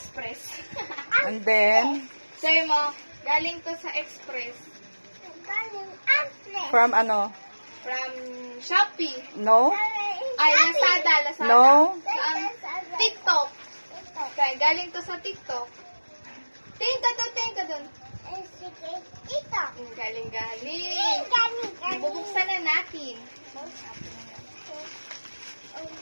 And then, Sabi mo, galing to sa Express. from ano? From Shopee. No? Ay, Lazada. No? Saan? TikTok. Okay, galing to sa TikTok. Tingin ka dun. Galing. Bubuksan na natin.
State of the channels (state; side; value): inverted; both; correlation -1.00